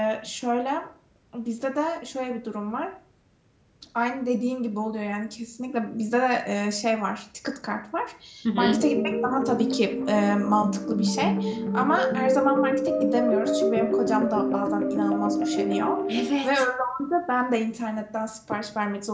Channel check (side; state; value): both; identical; correlation 1.00